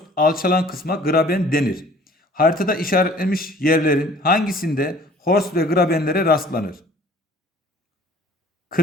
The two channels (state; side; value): normal; both; correlation 0.52